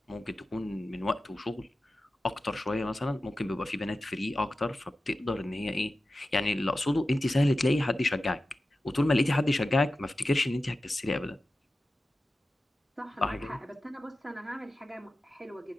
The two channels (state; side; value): normal; both; correlation 0.94